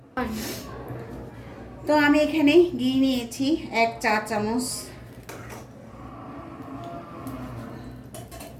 তো আমি এখানে ঘি নিয়েছি 1 চা চামচ।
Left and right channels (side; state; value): both; identical; correlation 1.00